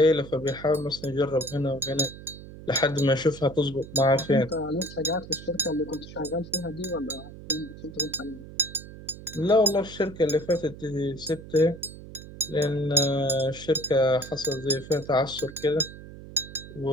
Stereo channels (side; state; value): right; noise; hum, 15 dB below the sound